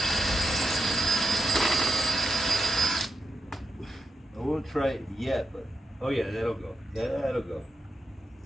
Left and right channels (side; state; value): both; normal; correlation 0.86